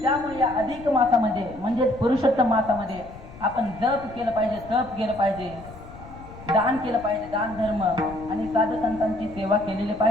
त्यामुळे या अधिक मासामध्ये म्हणजे पुरुषोत्तम मासामध्ये आपण जप केलं पाहिजे, तप केलं पाहिजे, दान केलं पाहिजे, दान धर्म आणि साधू संतांची सेवा केलेली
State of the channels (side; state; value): left; noise; rumble, 17 dB below the sound